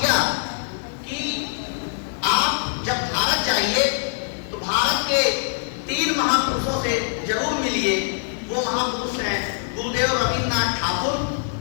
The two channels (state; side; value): silent; right; 63 dB below the other